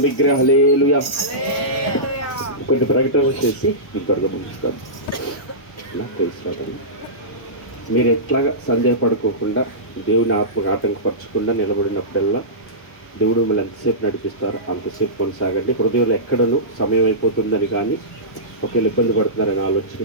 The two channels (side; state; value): right; late; 1.1 ms